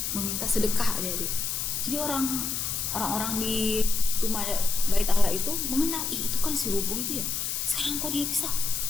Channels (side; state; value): left; noise; hiss, 1 dB below the sound